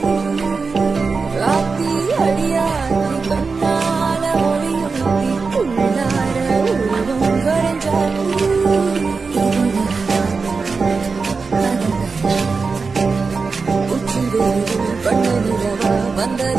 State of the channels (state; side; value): quieter; left; 4.6 dB